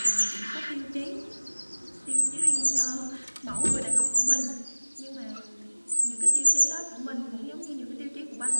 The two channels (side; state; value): both; inverted; correlation -1.00